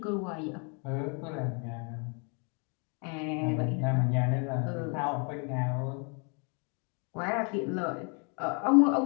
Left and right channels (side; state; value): right; quieter; 36.9 dB